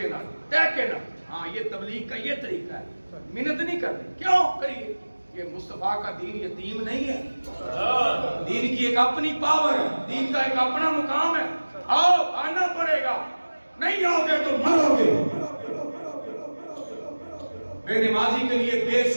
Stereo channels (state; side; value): inverted; both; correlation -1.00